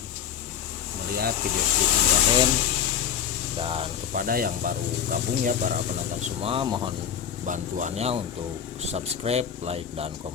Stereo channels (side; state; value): right; quieter; 8.7 dB